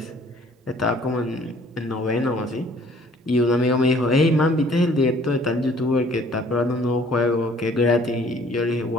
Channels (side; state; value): both; normal; correlation 0.57